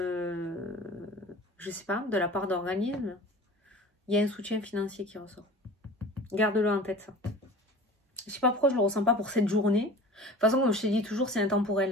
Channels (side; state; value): both; normal; correlation 0.40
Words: je sais pas, de la part d'organismes. Il y a un soutien financier qui ressort. Garde-le en tête, ça. Je sais pas pourquoi je le ressens pas pour cette journée. De toute façon, comme je te dis toujours, c'est intemporel.